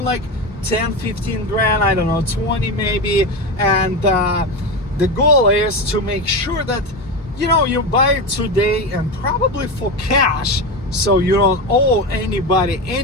like 10, 15 grand, I don't know, 20 maybe. And the goal is to make sure that, you know, you buy it today and probably for cash, so you don't owe anybody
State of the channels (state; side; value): normal; both; correlation 0.19